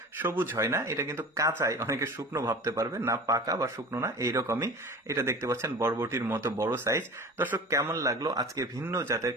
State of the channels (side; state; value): both; normal; correlation 0.37